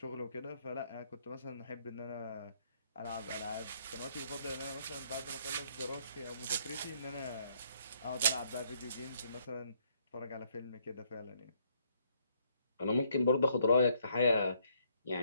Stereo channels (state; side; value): inverted; both; correlation -0.68